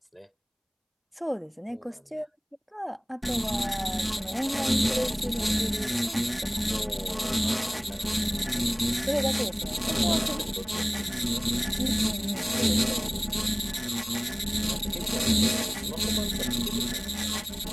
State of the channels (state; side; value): identical; both; correlation 1.00